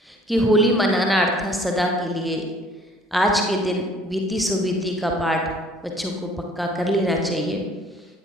कि होली मनाना अर्थात सदा के लिए आज के दिन बीती सो बीती का पाठ बच्चों को पक्का कर लेना चाहिए,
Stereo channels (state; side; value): normal; both; correlation 0.55